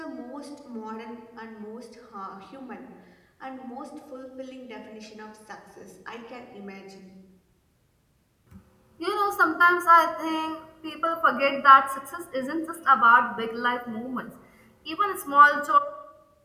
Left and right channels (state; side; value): identical; both; correlation 1.00